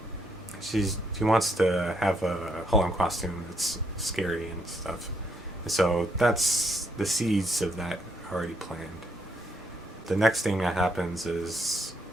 she wants to have a Halloween costume that's scary and stuff. And so that's the seeds of that already planned. The next thing that happens is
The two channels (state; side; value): normal; both; correlation 0.74